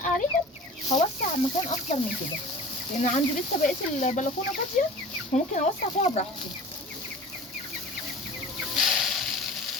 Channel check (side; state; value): both; normal; correlation 0.39